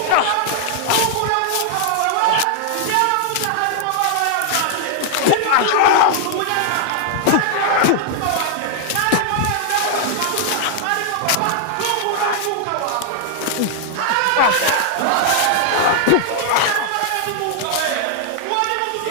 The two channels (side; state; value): both; different; correlation 0.00